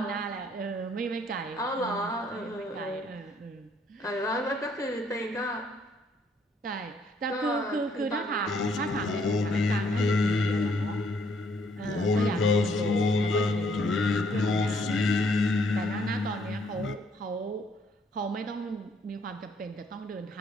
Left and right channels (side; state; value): both; normal; correlation 0.67